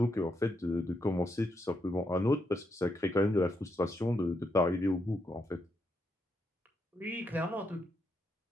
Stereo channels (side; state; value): both; normal; correlation 0.80